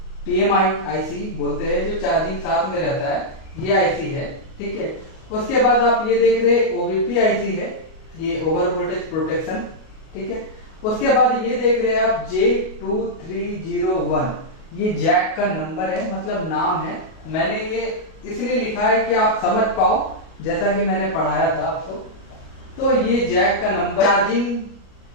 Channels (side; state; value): right; late; 37 ms